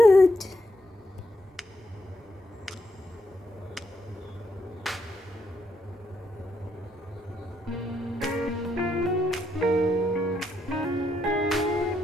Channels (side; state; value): both; normal; correlation 0.78